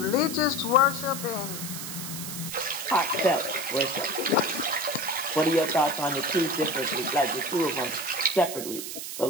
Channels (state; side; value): noise; right; hiss, 7 dB below the sound